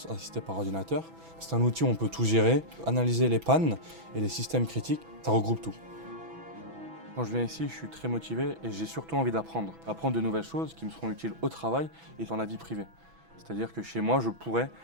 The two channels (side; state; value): left; late; 6.1 ms